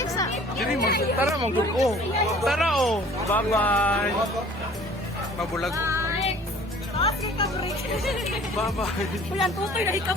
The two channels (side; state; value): both; normal; correlation 0.50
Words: sa... Diri mo, tara mo, oh. Tara oh. Bye-bye. Mabulag. Bye-bye. Ulan tutoy na